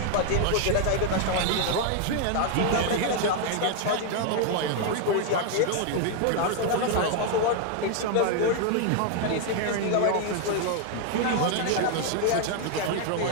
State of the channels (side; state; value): both; different; correlation 0.00